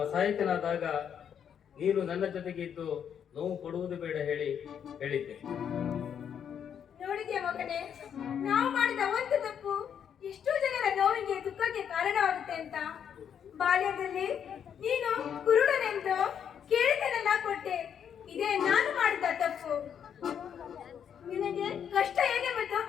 ಅಸಹಾಯಕನಾದಾಗ ನೀನು ನನ್ನ ಜೊತೆಗೆ ಇದ್ದು ನೋವು ಕೊಡುವುದು ಬೇಡ ಹೇಳಿದ್ದೆ. ನೋಡಿದ್ಯಾ ಮಗನೇ, ನಾವು ಮಾಡಿದ ಒಂದು ತಪ್ಪು ಎಷ್ಟೋ ಜನರ ನೋವಿಗೆ ದುಃಖಕ್ಕೆ ಕಾರಣವಾಗುತ್ತೆ ಅಂತ. ಬಾಲ್ಯದಲ್ಲಿ ನೀನು ಕುರುಡನೆಂದು ಕೇಳಿದನೆಲ್ಲ ಕೊಟ್ಟೆ. ಇದೇ ನಾನು ಮಾಡಿದ ತಪ್ಪು. ನಿನಗೆ ಕಷ್ಟ ಏನೆಂಬುದು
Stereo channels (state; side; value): quieter; right; 8.4 dB